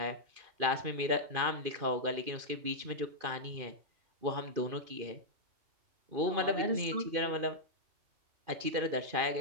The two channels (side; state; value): left; late; 2.5 ms